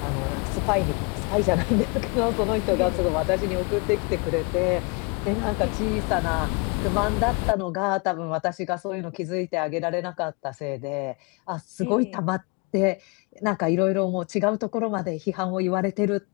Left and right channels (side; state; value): right; quieter; 32.4 dB